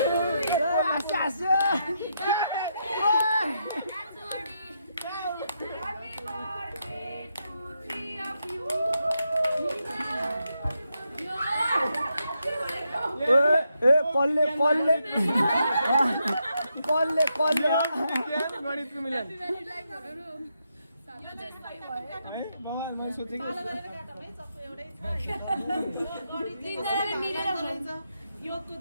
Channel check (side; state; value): both; inverted; correlation -0.81